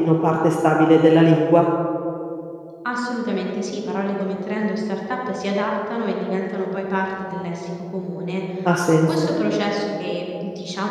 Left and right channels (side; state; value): both; identical; correlation 1.00